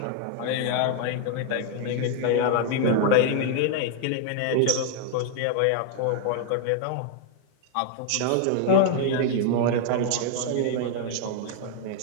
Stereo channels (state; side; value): different; both; correlation 0.00